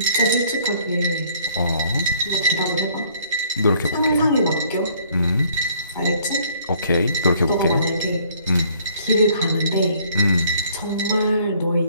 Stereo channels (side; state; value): both; inverted; correlation -0.61